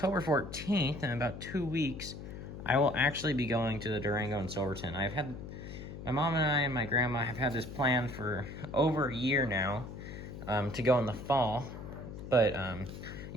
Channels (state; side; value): noise; left; hum, 10 dB below the sound